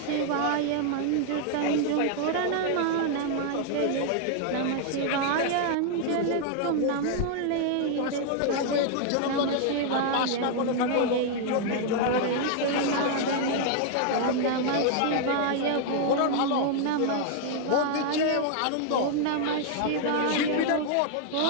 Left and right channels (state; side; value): different; both; correlation 0.00